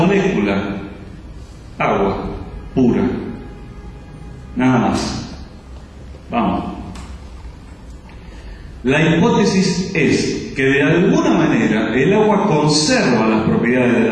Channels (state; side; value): identical; both; correlation 1.00